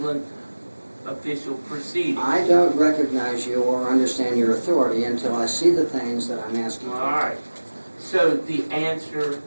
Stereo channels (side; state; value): both; inverted; correlation -1.00